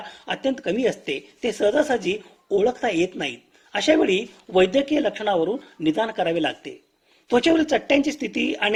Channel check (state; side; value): identical; both; correlation 1.00